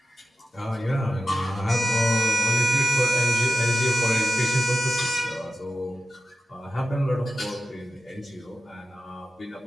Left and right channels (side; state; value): both; normal; correlation 0.93